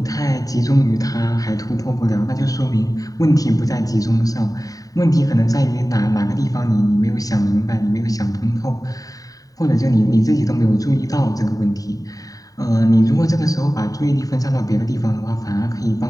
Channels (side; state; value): right; late; 0.17 ms